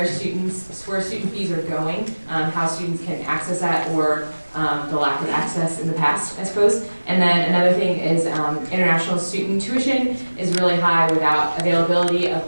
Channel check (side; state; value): both; inverted; correlation -1.00